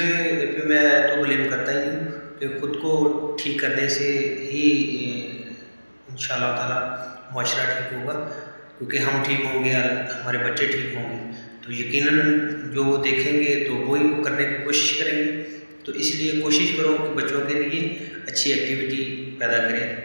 पे मैं तो ब्लेम करता ही नहीं कि खुद को ठीक करने से ही इंशाअल्लाह ताला मुआशरा ठीक होगा, क्योंकि हम ठीक होंगे, हमारे बच्चे ठीक होंगे, तो यकीनन जो वो देखेंगे तो वही वो करने की कोशिश करेंगे। तो इसलिए कोशिश करो कि बच्चों के लिए अच्छी एक्टिविटी पैदा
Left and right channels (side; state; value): both; inverted; correlation -1.00